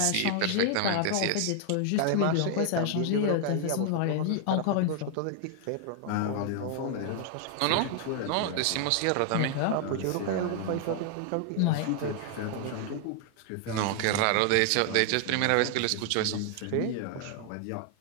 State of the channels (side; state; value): both; different; correlation 0.00